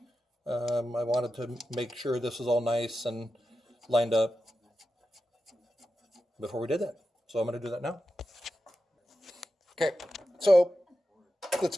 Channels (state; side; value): normal; both; correlation 0.91